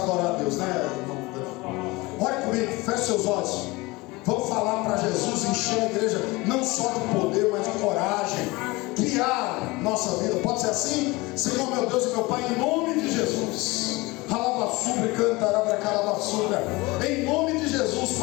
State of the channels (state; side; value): quieter; right; 22.9 dB